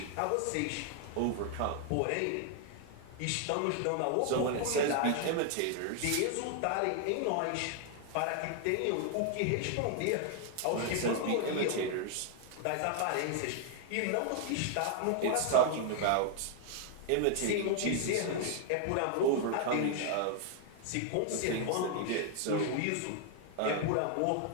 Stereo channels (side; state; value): both; different; correlation 0.00